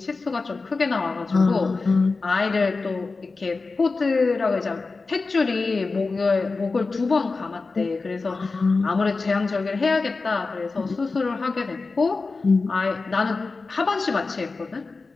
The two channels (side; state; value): right; quieter; 4.0 dB